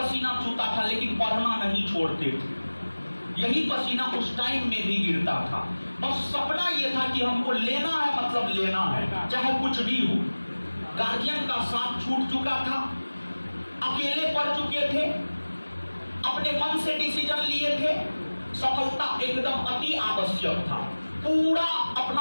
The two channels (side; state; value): both; inverted; correlation -1.00